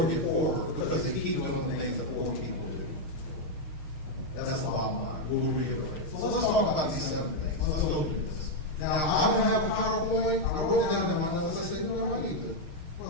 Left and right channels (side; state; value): right; late; 6.5 ms